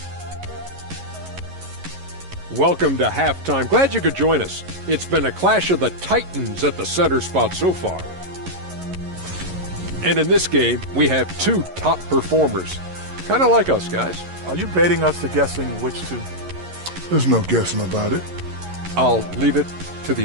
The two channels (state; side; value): late; left; 11 ms